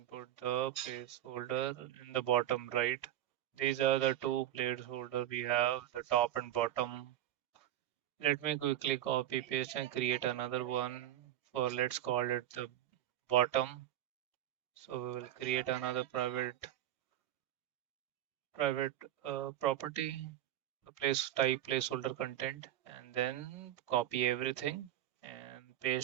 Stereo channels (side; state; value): left; quieter; 12.6 dB